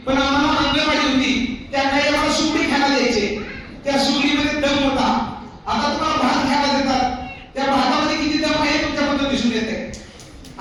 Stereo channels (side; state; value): both; identical; correlation 1.00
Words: आम्हाला अंगणवाडी होती, त्या काही आम्हाला सुगडी खायला द्यायचे. त्या सुगडीमध्ये दम होता. आता तुम्हाला भात खायला देतात, त्या भातामध्ये किती दम आहे तुमच्याबद्दल दिसून येते.